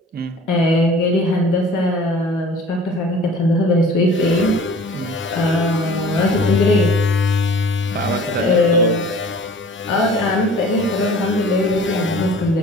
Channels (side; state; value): both; normal; correlation 0.47